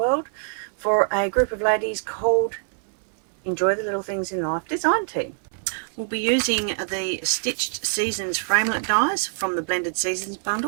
for a group of ladies called Enjoy the Little Things in Life Design Team. We'll be using the Stitched Seasons framelit dies from the Blended Seasons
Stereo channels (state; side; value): silent; left; 58 dB below the other